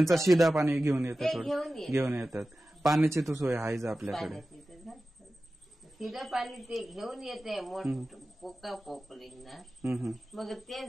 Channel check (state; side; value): normal; both; correlation 0.95